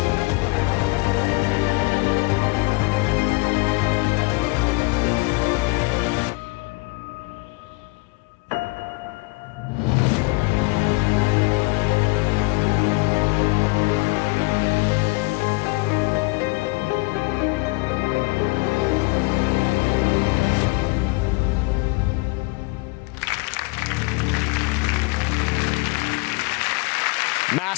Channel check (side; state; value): right; quieter; 26.7 dB